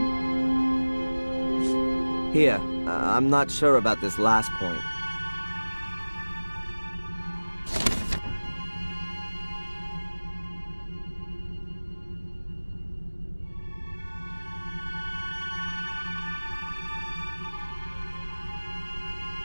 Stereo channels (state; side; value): inverted; both; correlation -1.00